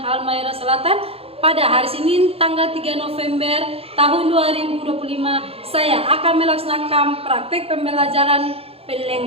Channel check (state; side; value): late; left; 0.28 ms